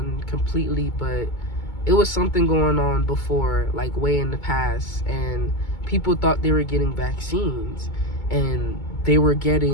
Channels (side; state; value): right; late; 2.2 ms